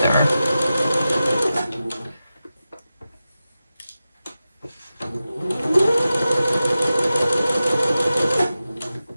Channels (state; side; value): inverted; both; correlation -0.93